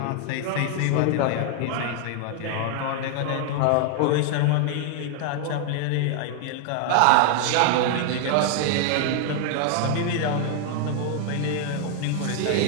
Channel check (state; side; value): different; both; correlation 0.00